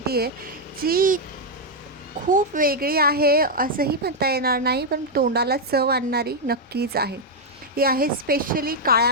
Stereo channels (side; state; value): both; normal; correlation -0.01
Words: आहे जी खूप वेगळी आहे असंही म्हणता येणार नाही, पण तोंडाला चव आणणारी नक्कीच आहे. ही आहे स्पेशली